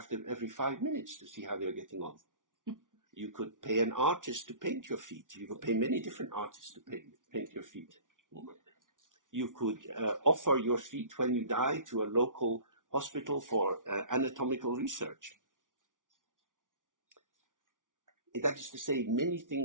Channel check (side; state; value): left; late; 0.88 ms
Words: them every 5 minutes to see how they're getting on. You could pay an artist to paint your feet. You could pay many different artists to paint your feet. You could offer your feet when you die to a local hospital for anatomical research. That is to say, many